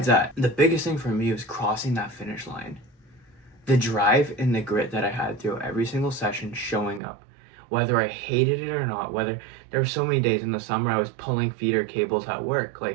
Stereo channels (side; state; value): left; drops out; at 7.0 s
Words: that, the biggest thing for me was crossing that finish line. The drive and the grit that I had through every single session, showing up, whether I hated it or not, whether there were so many days in the summer I was pulling feeder cables at work,